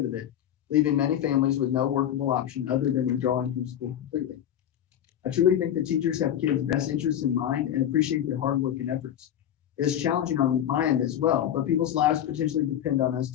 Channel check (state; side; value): quieter; right; 10.4 dB